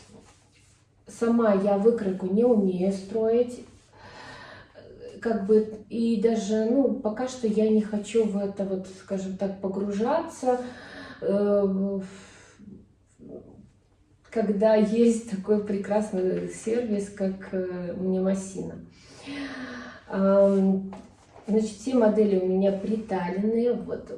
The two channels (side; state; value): both; identical; correlation 1.00